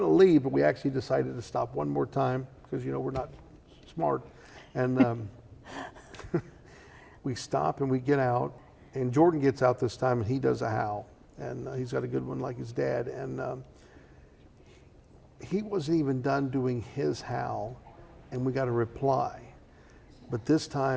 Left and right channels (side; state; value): both; identical; correlation 1.00